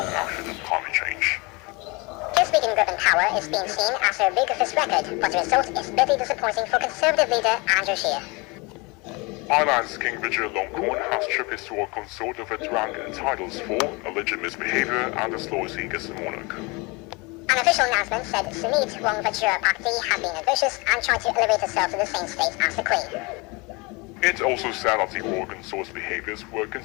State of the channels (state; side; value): quieter; right; 27.2 dB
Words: action on climate change. His weakened grip and power is being seen as a big of his record, but the result is bitterly disappointing for Conservative leader Andrew Scheer. Ireland's King Richard Longcorn has stripped his royal consort of its rank and titles for alleged misbehavior and disloyalty against the monarch. An official announcement said Sumit Wongvajra Bhakti had been ambitious and tried to elevate herself to the same state as the Queen. It also said that the royal consort's behaviors were